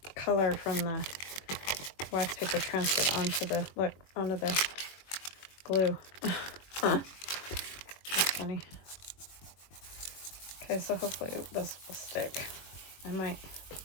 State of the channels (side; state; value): right; late; 21 ms